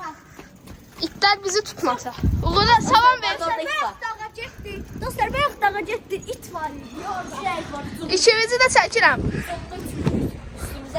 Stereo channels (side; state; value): both; identical; correlation 1.00